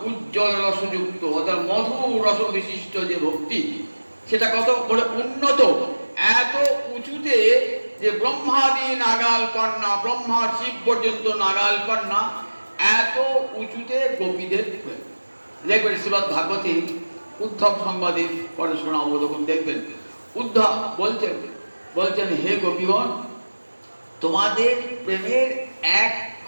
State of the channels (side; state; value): both; inverted; correlation -1.00